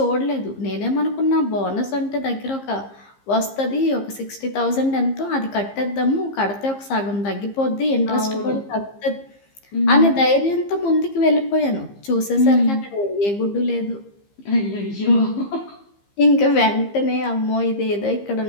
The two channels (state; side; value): late; right; 15 ms